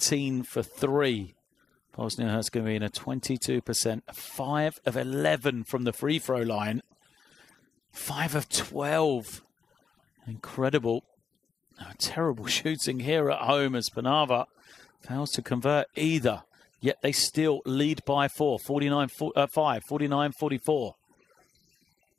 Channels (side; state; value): right; quieter; 6.2 dB